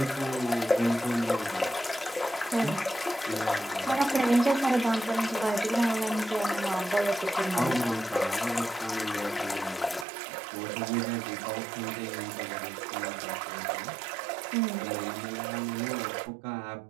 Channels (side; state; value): left; drops out; at 10.1 s